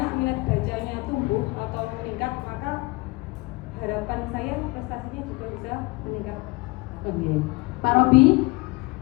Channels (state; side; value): quieter; right; 24.1 dB